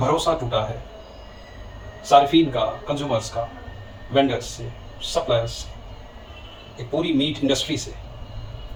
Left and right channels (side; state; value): both; identical; correlation 1.00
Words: टूटा है सार्फिन का, कंज्यूमर्स का, वेंडर्स से, सप्लायर्स से, एक पूरी मीट इंडस्ट्री से।